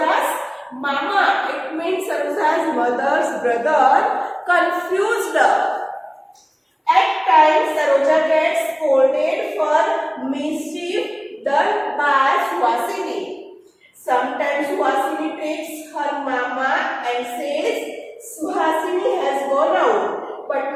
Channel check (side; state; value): both; identical; correlation 1.00